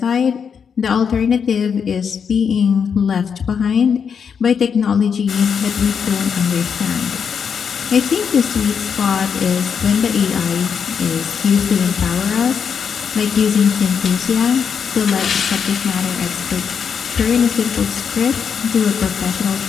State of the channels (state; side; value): quieter; right; 6.8 dB